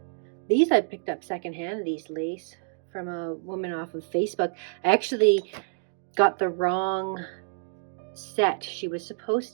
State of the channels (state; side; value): silent; left; digital silence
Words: These I picked up secondhand, these lace, from a woman off of Facebook. I actually got the wrong set. She was